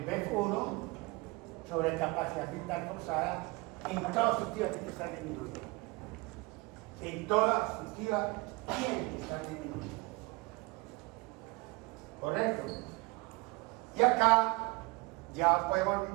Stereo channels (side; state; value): left; quieter; 24.9 dB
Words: BF1 sobre capacidad mental forzada. En toda obstructiva tiene que estar disminuido. En toda obstructiva tiene que estar disminuido. ¿Correcto? Y acá ya podemos